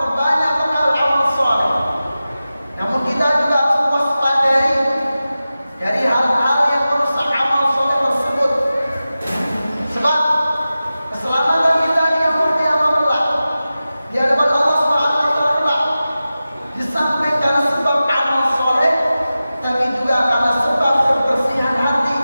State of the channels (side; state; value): both; inverted; correlation -0.95